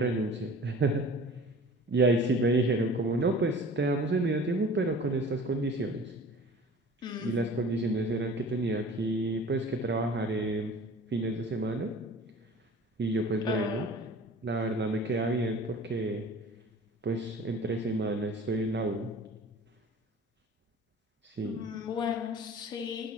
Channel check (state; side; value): normal; both; correlation 0.43